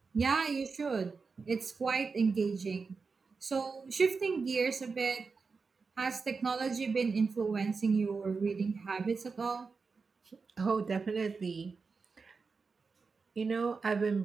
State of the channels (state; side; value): quieter; left; 4.7 dB